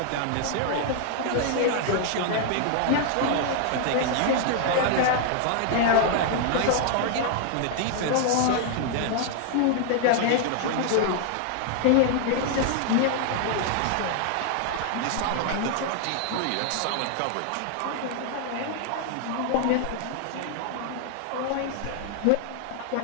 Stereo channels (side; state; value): both; different; correlation 0.00